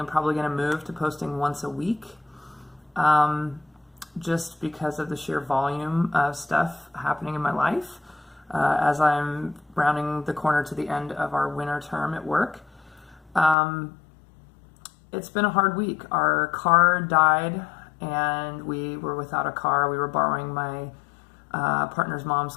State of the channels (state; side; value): drops out; right; at 13.6 s